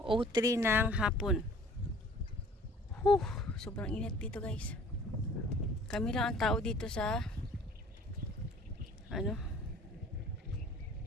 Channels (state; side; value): normal; both; correlation 0.51